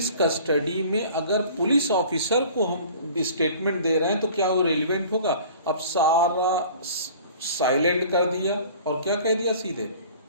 कस्टडी में अगर पुलिस ऑफिसर को हम स्टेटमेंट दे रहे हैं तो क्या वो रेलिवेंट होगा। अब सारा साइलेंट कर दिया और क्या कह दिया, सीधे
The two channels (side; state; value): both; inverted; correlation -0.46